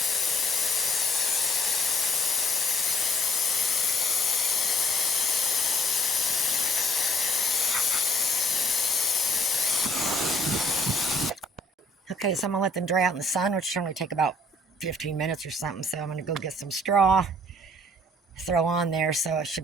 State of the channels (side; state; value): both; normal; correlation 0.62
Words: Okay, so I'm gonna let them dry out in the sun, which should only take about 15 minutes or something. So I'm gonna go get some straw, throw on there, so it should